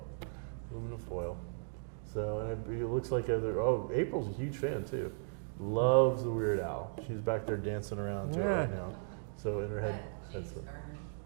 Aluminum foil. So, and it looks like April's a huge fan too. Loves the Weird Al. She's back there dancing around to it right now. So in her head.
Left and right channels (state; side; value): silent; left; digital silence